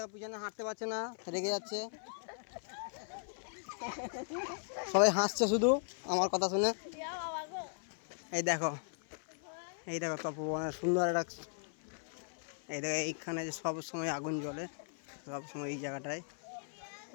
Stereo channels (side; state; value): right; silent; 53 dB below the other